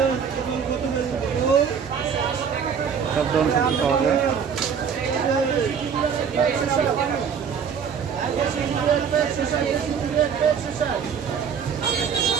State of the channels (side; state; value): left; quieter; 7.0 dB